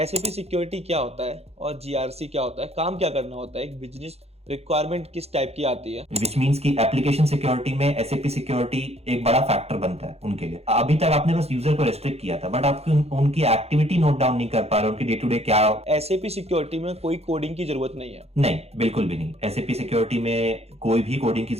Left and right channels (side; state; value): left; late; 0.30 ms